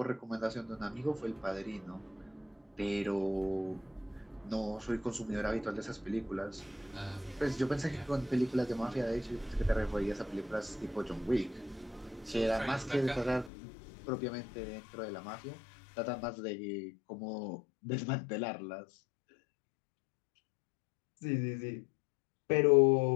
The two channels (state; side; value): drops out; right; at 13.5 s